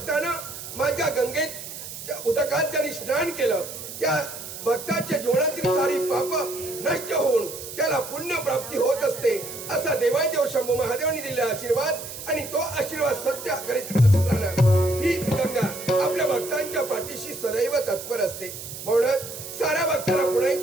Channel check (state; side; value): noise; right; hiss, 10 dB below the sound